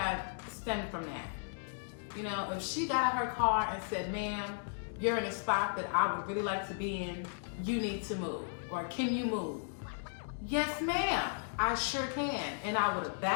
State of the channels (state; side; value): silent; right; digital silence